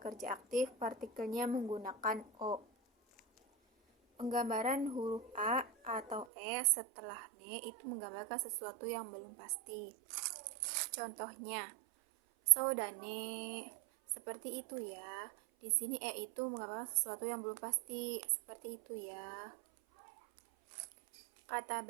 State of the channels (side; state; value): left; drops out; at 6.2 s